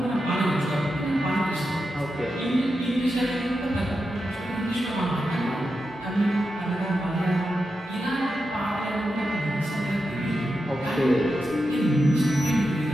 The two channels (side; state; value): both; normal; correlation 0.88